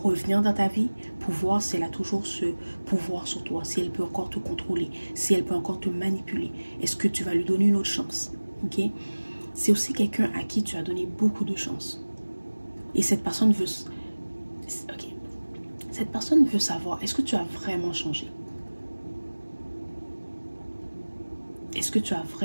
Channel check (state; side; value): inverted; both; correlation -1.00